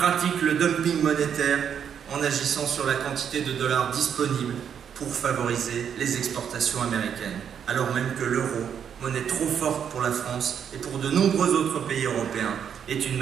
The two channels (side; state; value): left; quieter; 8.1 dB